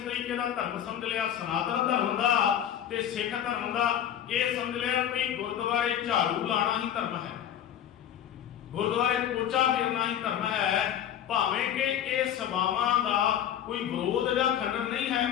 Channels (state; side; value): quieter; right; 10.1 dB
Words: ਦਾ ਧਰਮ ਸਮਝ ਲਿਆ। ਸਨਾਤਨ ਧਰਮ ਦਾ ਤੇ ਸਿੱਖ ਧਰਮ ਦਾ ਇਹ ਸਮਝ ਲਿਆ ਕਿ ਗੁਰਦੁਆਰੇ ਝਾੜੂ ਲਾਣਾ ਹੀ ਧਰਮ ਹੈ, ਗੁਰਦੁਆਰੇ ਪੋਚਾ ਫੇਰਨਾ ਹੀ ਧਰਮ ਹੈ। ਭਾਵੇਂ ਕਿ ਇਹ ਸਭਾਵਾਂ ਦਾ ਕੋਈ ਵਿਰੋਧ ਜਾਂ ਖੰਡਨ ਨਹੀਂ ਹੈ,